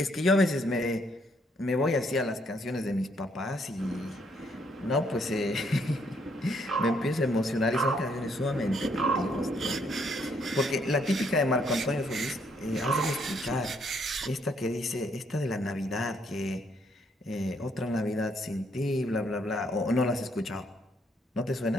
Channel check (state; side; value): normal; both; correlation 0.70